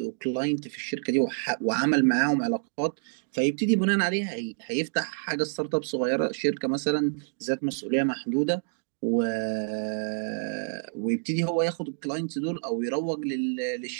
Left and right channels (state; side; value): silent; left; digital silence